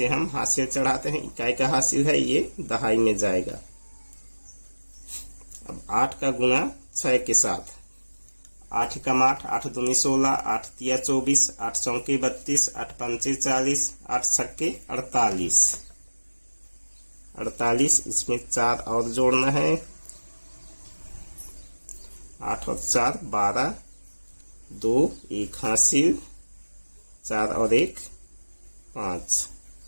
हम हासिल चढ़ाते हैं। इकाई का हासिल है, ये दहाई में जाएगा। अब 8 का गुणा 6 के साथ 8 एकम 8 8 दूनी 16 8 तिया 24 8 चौके 32 8 पंचे 40 8 छक्के 48। 48 इसमें 4 और जोड़ना है। 8 और 4 12 2 1 हासिल 4 और 1 5।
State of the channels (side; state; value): both; inverted; correlation -1.00